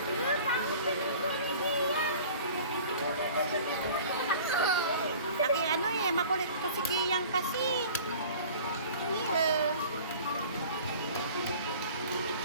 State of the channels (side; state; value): both; inverted; correlation -0.45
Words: Laki ano eh, makulit to si Kiyang kasi.